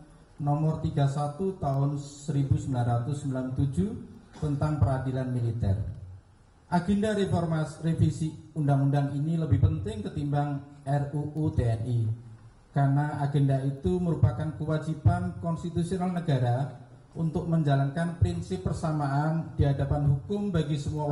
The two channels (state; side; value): identical; both; correlation 1.00